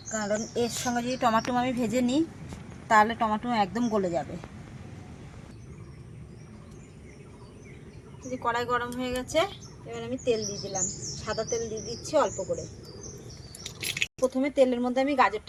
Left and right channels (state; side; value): identical; both; correlation 1.00